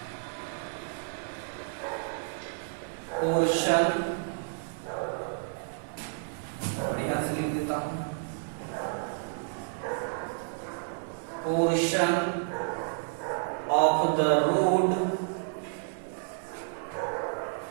यहाँ से लिख देता हूं portion of the road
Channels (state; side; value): silent; left; digital silence